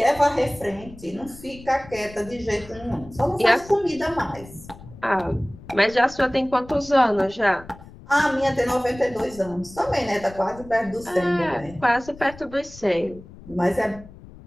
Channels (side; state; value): left; noise; rumble, 19 dB below the sound